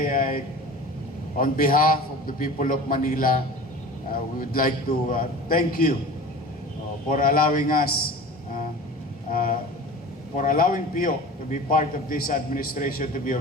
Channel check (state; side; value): normal; both; correlation 0.37